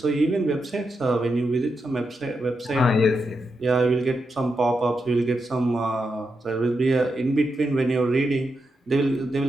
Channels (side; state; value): both; normal; correlation 0.85